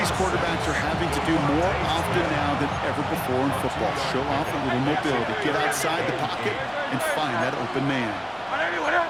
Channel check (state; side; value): identical; both; correlation 1.00